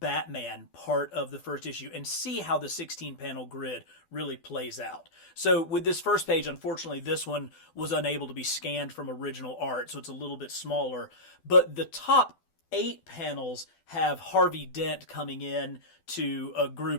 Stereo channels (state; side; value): late; right; 12 ms